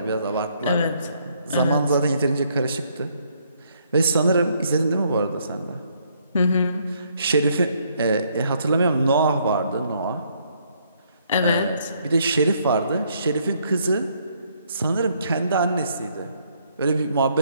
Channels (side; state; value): both; inverted; correlation -0.69